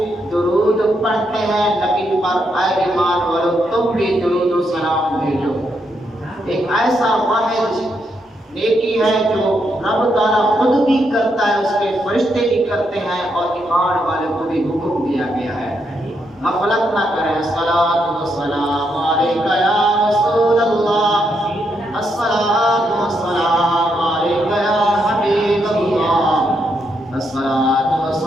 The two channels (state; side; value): normal; both; correlation 0.79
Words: درود پڑھتے ہیں نبی پر، اے ایمان والو تم بھی درود و سلام بھیجو۔ ایک ایسا واحد نیکی ہے جو رب تعالیٰ خود بھی کرتا ہے، اس کے فرشتے بھی کرتے ہیں اور ایمان والے کو بھی حکم دیا گیا ہے۔ غفلت نہ کریں۔ الصلاۃ والسلام علیکہ یا رسول اللہ، الصلاۃ والسلام علیکہ یا حبیب اللہ، الصلاۃ